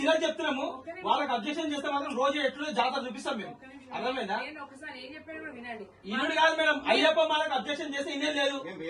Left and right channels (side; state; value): both; identical; correlation 1.00